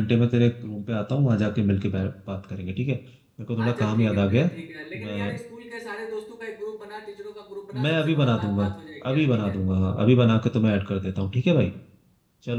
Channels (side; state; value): both; identical; correlation 1.00